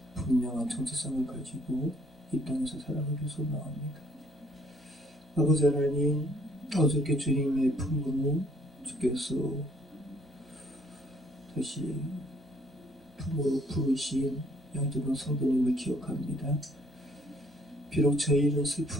분명한 정체성을 가지고 이 땅에서 살아가기 소망합니다. 아버지 하나님, 어저께 주님의 품으로 주께서 다시 품으로 부르신 양조동 성도님을 기억합니다. 비록 저희는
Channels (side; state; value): both; normal; correlation 0.64